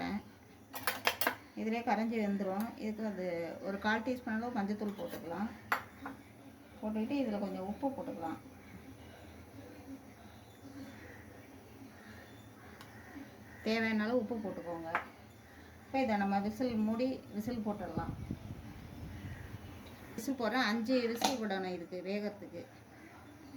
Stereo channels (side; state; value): both; identical; correlation 1.00